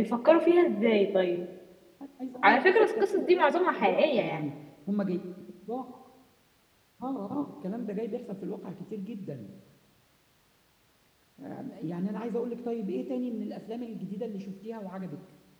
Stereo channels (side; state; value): both; identical; correlation 1.00